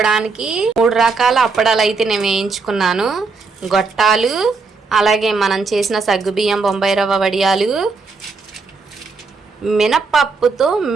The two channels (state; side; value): quieter; left; 4.4 dB